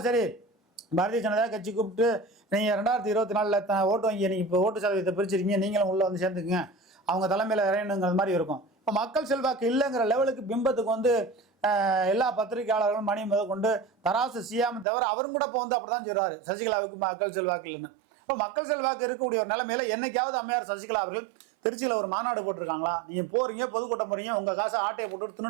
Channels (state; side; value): drops out; left; at 14.9 s